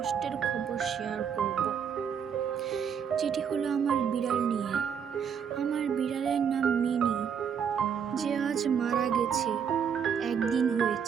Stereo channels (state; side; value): quieter; left; 7.5 dB